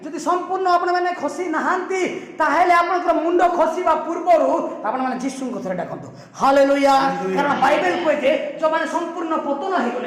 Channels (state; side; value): identical; both; correlation 1.00